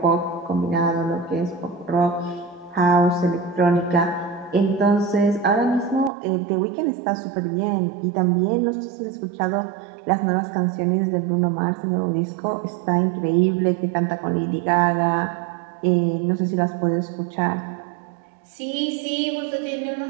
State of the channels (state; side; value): drops out; left; at 6.1 s